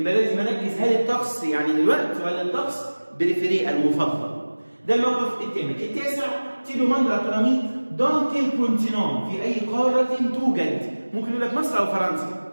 لازم اركز هل الطقس يعني دلوقتي ولا الطقس بريفيري المفضل. ده الموقف الثامن. التاسع تي دوماند ا ton ami dans quel continent، في اي قاره توجد. ممكن يقول لك مصر او فرنسا.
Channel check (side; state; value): both; inverted; correlation -1.00